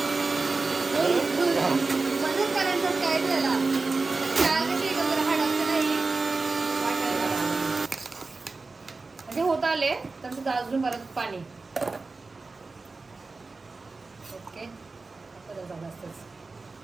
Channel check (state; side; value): quieter; left; 3.8 dB